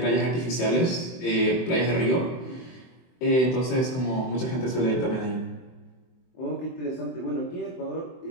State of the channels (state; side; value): late; right; 23 ms